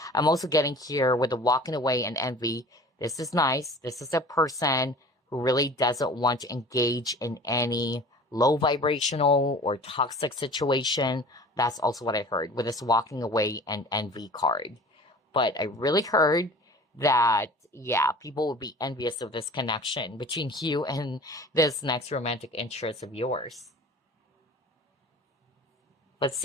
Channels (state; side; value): normal; both; correlation 0.43